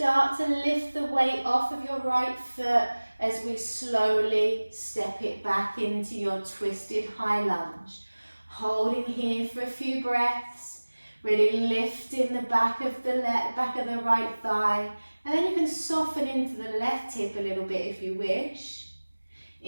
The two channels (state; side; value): inverted; both; correlation -1.00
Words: to lift the weight off of your right foot as we slowly step it back into your twisted high lunge. Holding here for a few breaths, really lifting the back of the right thigh, and then you can soften into the left hip a little bit if you wish.